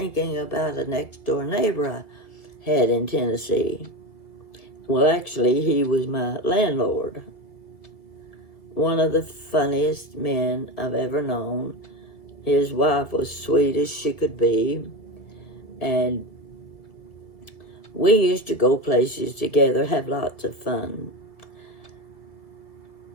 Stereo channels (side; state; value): right; late; 1.8 ms